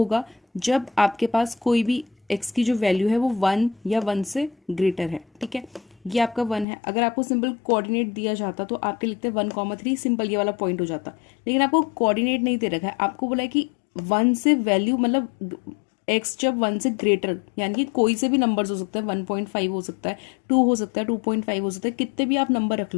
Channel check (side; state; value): right; drops out; at 6.7 s